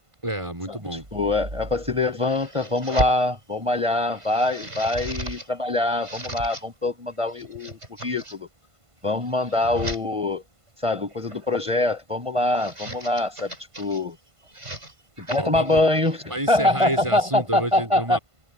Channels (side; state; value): left; late; 1.5 ms